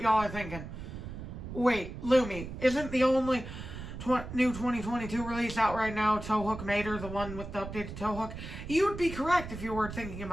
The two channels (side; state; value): right; noise; rumble, 10 dB below the sound